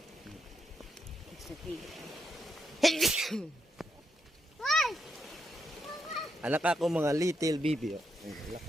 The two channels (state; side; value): normal; both; correlation 0.82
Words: Anak ako mga little baby.